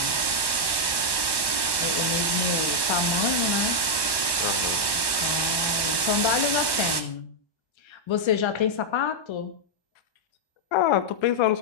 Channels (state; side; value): late; right; 1.1 ms